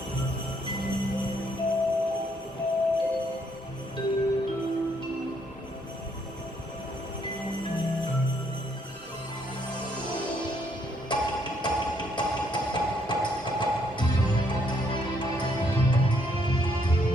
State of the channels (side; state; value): both; normal; correlation 0.71